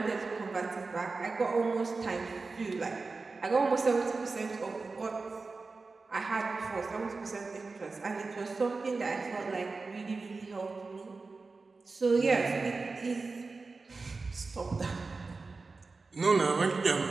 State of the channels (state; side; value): quieter; left; 4.0 dB